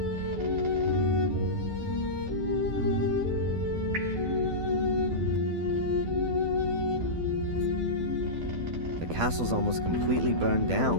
The castle's almost completely burned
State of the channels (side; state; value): left; late; 12 ms